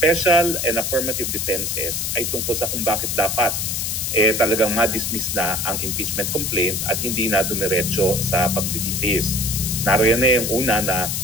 and affirmative defenses ay tungkol sa kung bakit dapat talagang ma-dismiss na ang impeachment complaint at hindi na dumiretso sa paglilitis. Naroon na yung una na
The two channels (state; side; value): noise; left; hiss, 1 dB below the sound